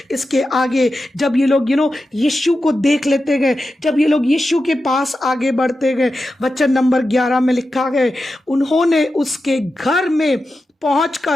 इसके आगे, जब ये लोग यीशु को देख लेते गए, जब ये लोग यीशु के पास आगे बढ़ते गए, वचन नंबर 11 में लिखा है, उन्होंने उसके घर में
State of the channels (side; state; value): both; normal; correlation 0.91